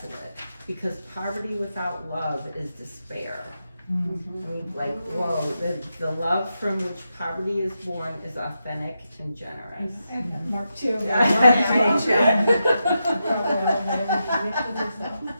because poverty without love is despair. I mean, like, whoa, the love from which poverty is born is authentic and generous. Mark too.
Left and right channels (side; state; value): both; inverted; correlation -0.86